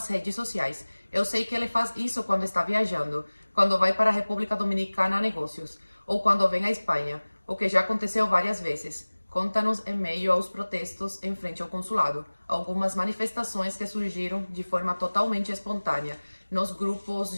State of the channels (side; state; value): both; inverted; correlation -1.00